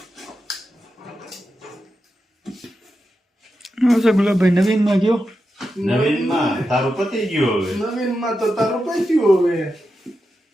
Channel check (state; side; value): normal; both; correlation 0.89